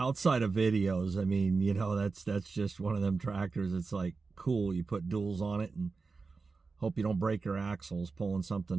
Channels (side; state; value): left; quieter; 4.3 dB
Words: of videos, I mean, you know, that's just one of them tractors. It's like, cool, you put duals on it and hope you don't break your axles pulling